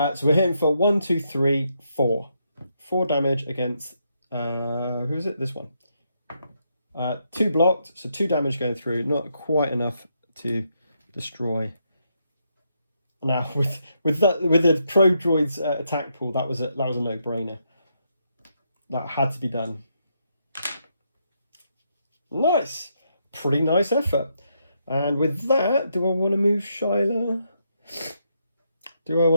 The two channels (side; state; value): both; inverted; correlation -0.79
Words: we're hitting for 1, 2, 3, 4. 4 damage against, who is it? This one. 2 blocked, so 2 damage going through. Not quite enough to destroy. Now, with the Pro Droid's attack pool, that was a no-brainer. That had to be done. Nice. Pretty nice effort. And with that, do I want to move Shyla? Do I